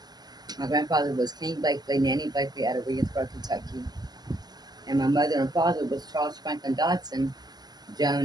My grandfather was King Blakely, Nanny Blakely out of Williamsburg, Kentucky, and my mother and father was Charles Franklin Dodson,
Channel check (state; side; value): late; left; 0.20 ms